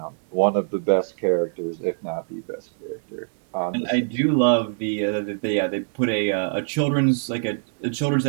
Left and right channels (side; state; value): left; silent; digital silence